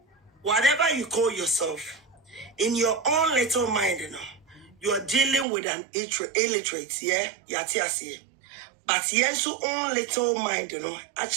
whatever you call yourself, in your own little mind, you are dealing with an illiterate, yeah, yatiasi. But yes, your own little mind,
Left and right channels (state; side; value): drops out; left; at 5.5 s